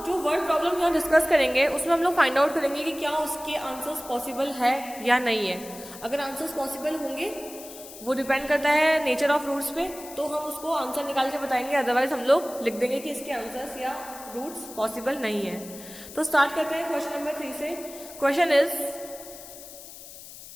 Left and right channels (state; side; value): noise; left; hiss, 15 dB below the sound